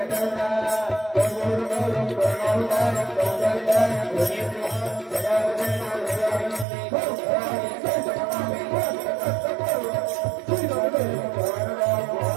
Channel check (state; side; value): drops out; left; at 6.7 s